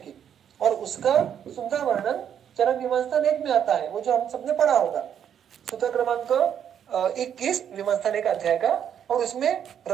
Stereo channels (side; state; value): left; quieter; 8.9 dB